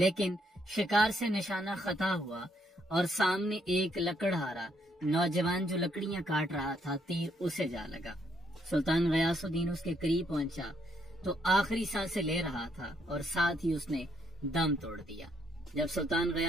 شکار سے نشانہ خطا ہوا اور سامنے ایک لکڑہارا نوجوان جو لکڑیاں کاٹ رہا تھا، تیر اسے جا لگا۔ سلطان غیاث الدین اس کے قریب پہنچا تو آخری سانسیں لے رہا تھا اور ساتھ ہی اس نے دم توڑ دیا۔ جب سلطان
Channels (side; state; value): both; normal; correlation 0.73